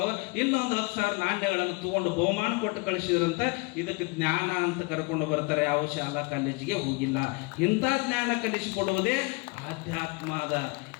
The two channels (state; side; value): quieter; right; 27.6 dB